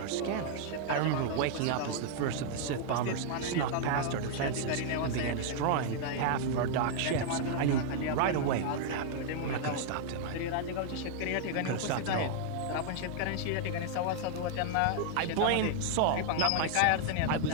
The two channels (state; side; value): different; both; correlation 0.00